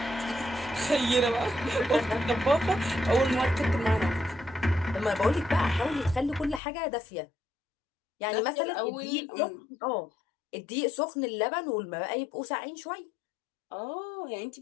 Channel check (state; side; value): drops out; right; at 6.6 s